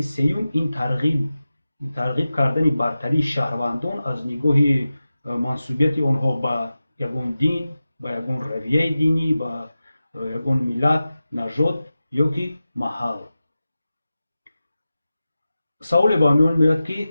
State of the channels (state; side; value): inverted; both; correlation -0.94